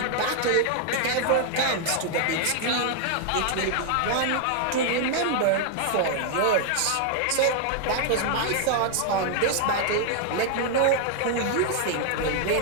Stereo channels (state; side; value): different; both; correlation 0.00